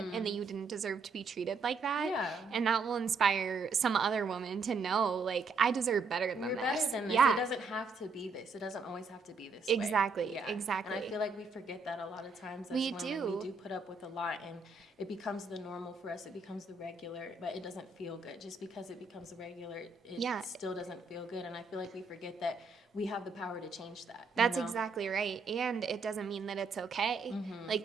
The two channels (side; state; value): left; quieter; 4.1 dB